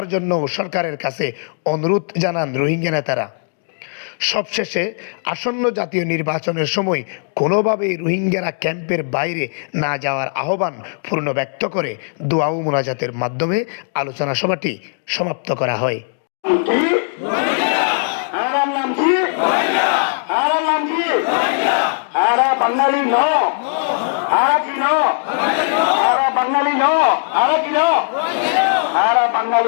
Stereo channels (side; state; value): right; silent; digital silence